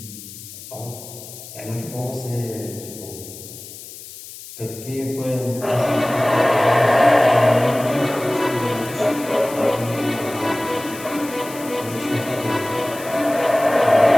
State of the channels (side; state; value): left; noise; hiss, 15 dB below the sound